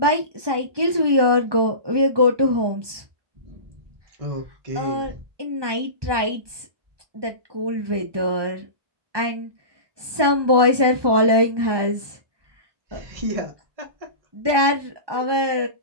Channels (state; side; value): late; left; 1.2 ms